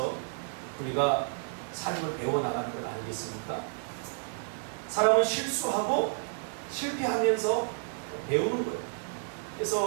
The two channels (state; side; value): silent; left; 57 dB below the other